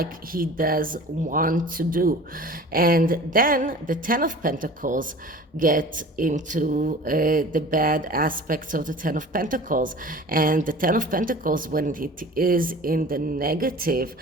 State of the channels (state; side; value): normal; both; correlation 0.41